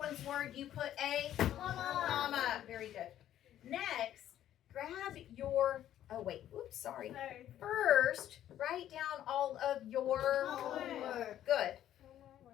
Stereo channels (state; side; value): quieter; right; 11.7 dB